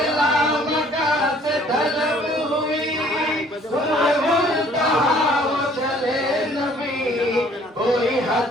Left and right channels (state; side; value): normal; both; correlation 0.57